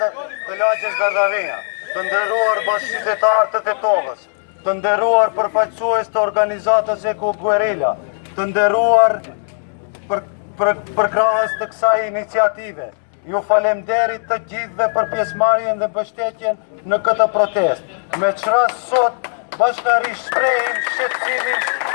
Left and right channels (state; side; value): silent; right; 67 dB below the other